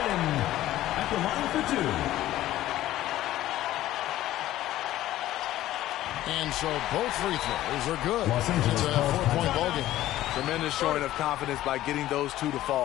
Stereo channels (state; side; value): quieter; right; 14.4 dB